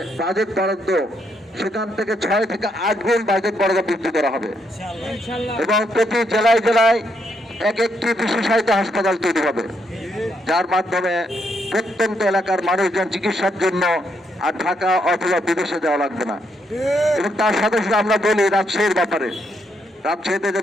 বাজেট বরাদ্দ সেখান থেকে 6 থেকে 8 গুণ বাজেট বরাদ্দ বৃদ্ধি করা হবে এবং প্রতি জেলায় জেলায় একটি বিশেষায়িত হাসপাতাল তৈরি হবে, যার মাধ্যমে প্রত্যন্ত এলাকার মানুষজন চিকিৎসার জন্য আর ঢাকা অথবা বিদেশে যাওয়া লাগবে না। এবং তার সাথে সাথে আমরা বলি রাজশাহীর ব্যাপারে, রাজশাহীতে যে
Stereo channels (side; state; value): both; normal; correlation 0.77